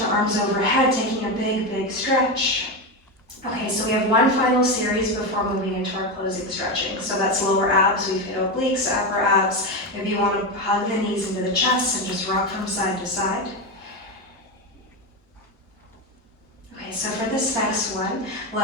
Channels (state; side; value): normal; both; correlation 0.14